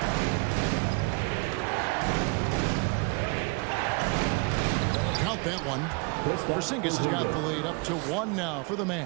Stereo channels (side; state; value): left; quieter; 31.3 dB